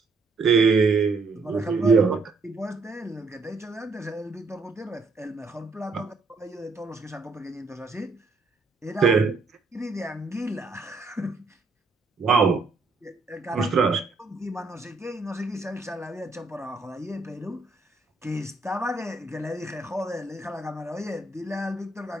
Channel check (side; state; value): left; quieter; 3.8 dB